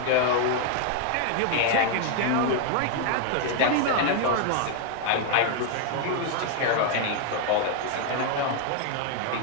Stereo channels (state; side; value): different; both; correlation 0.00